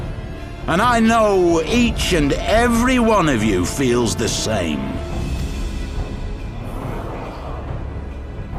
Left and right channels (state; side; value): identical; both; correlation 1.00